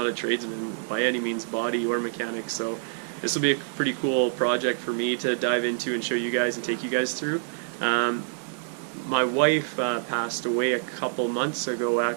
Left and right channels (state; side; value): silent; left; 60 dB below the other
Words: a tradesman by any means, body or mechanic, so this will be a pretty cool project for me to dive into and show you guys and take you guys through. My wife passed away a couple months ago